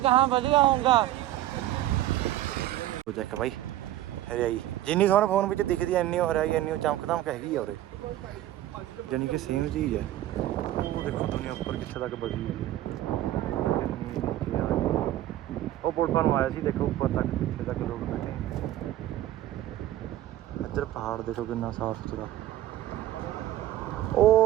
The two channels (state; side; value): quieter; left; 13.8 dB